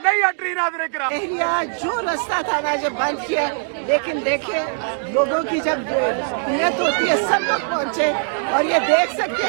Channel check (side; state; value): left; silent; 65 dB below the other